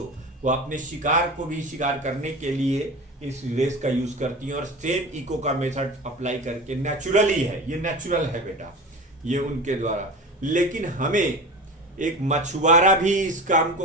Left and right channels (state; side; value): normal; both; correlation 0.31